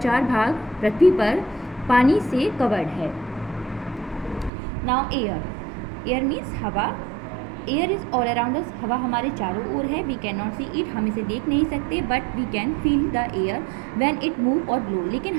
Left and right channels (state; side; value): drops out; left; at 4.5 s